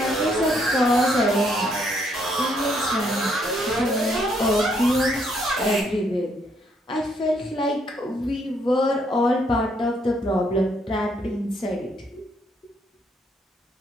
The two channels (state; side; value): normal; both; correlation 0.71